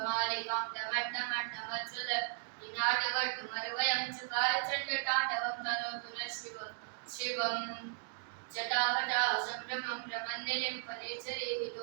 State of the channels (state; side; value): silent; left; digital silence